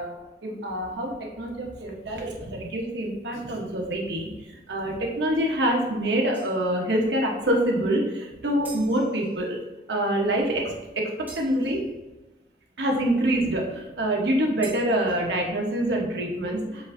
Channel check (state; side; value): normal; both; correlation 0.46